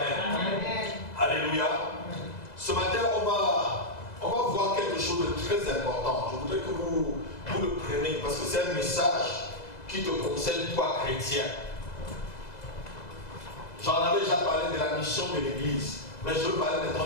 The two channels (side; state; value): right; late; 2.0 ms